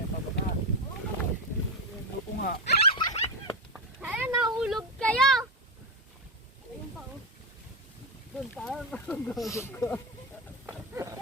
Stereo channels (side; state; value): both; normal; correlation 0.11